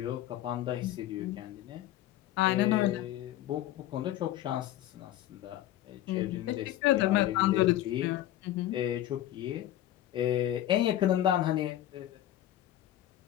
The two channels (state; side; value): quieter; right; 13.3 dB